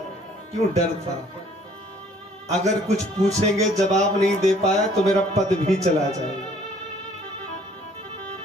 क्यों? डर था, अगर कुछ पूछेंगे जवाब नहीं दे पाए तो मेरा पद भी चला जाए।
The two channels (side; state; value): both; normal; correlation 0.58